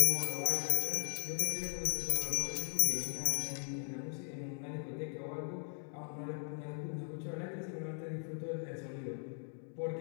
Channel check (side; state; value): right; silent; 52 dB below the other